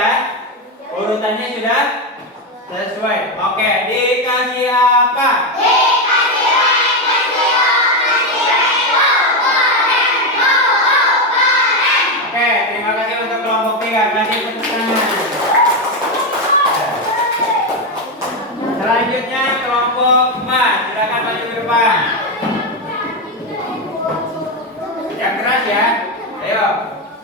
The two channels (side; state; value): both; normal; correlation 0.09